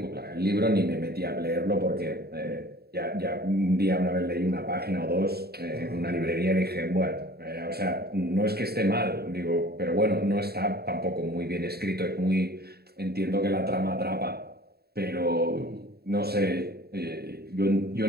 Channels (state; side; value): late; left; 0.46 ms